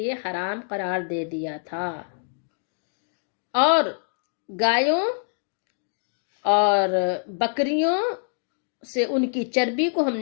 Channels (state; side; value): silent; right; digital silence